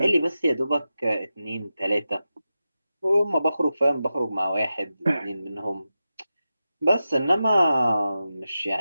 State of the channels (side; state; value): both; inverted; correlation -0.92